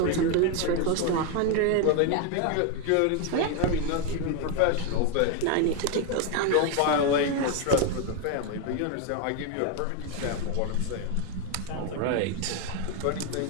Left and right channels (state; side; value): different; both; correlation 0.01